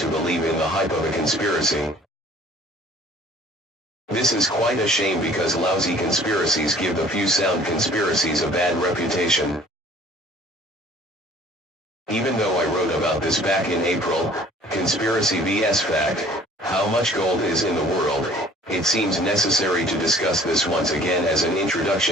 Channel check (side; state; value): both; normal; correlation 0.53